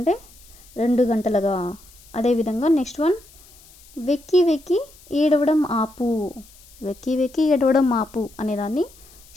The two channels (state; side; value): noise; left; hiss, 24 dB below the sound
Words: 2 గంటలుగా. అదేవిధంగా నెక్స్ట్ వన్, వెక్కి వెక్కి ఏడవడం ఆపు. వెక్కి వెక్కి ఏడవడం ఆపు అనేదాన్ని